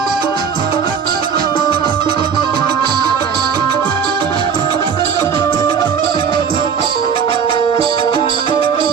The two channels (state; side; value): quieter; left; 6.8 dB